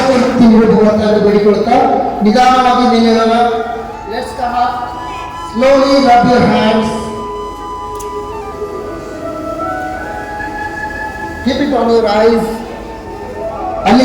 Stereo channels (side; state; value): both; identical; correlation 1.00